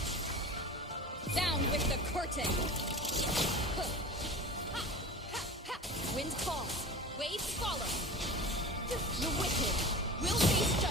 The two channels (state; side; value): normal; both; correlation 0.34